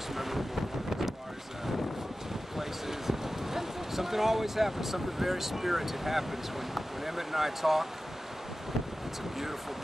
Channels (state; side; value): normal; both; correlation 0.95